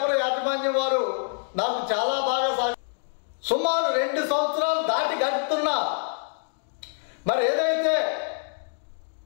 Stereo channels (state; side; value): silent; right; 61 dB below the other